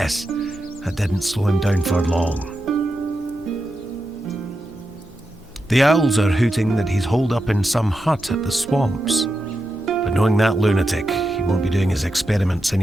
that didn't slow him down for long. The owls are hooting that he's holed up in some hut at the swamps. But knowing that lunatic, he won't be doing his experiments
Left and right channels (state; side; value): normal; both; correlation 0.88